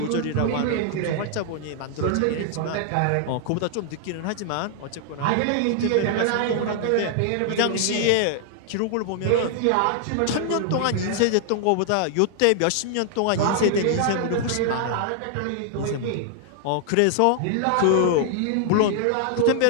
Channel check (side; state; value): both; different; correlation 0.00